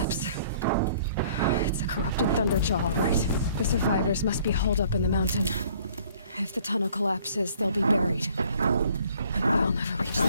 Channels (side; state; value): both; inverted; correlation -0.57